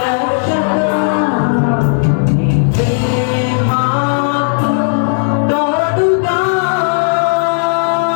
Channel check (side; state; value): right; silent; 70 dB below the other